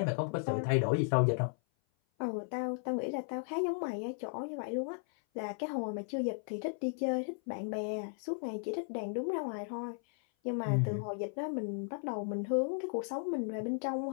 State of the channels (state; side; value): silent; right; 54 dB below the other